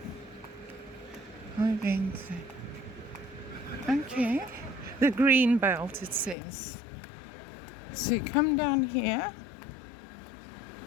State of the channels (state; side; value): drops out; right; at 6.4 s